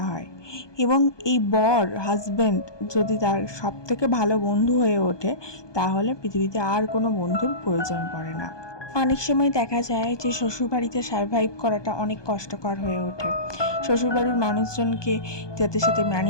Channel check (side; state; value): right; late; 1.2 ms